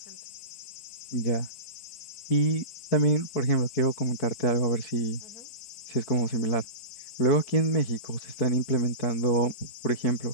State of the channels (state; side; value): late; right; 5.5 ms